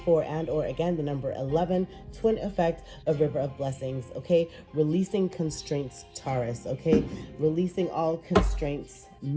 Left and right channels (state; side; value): identical; both; correlation 1.00